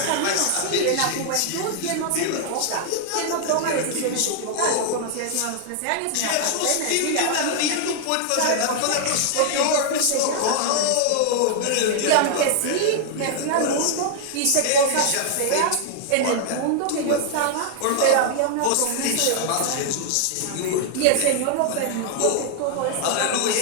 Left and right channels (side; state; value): both; different; correlation 0.00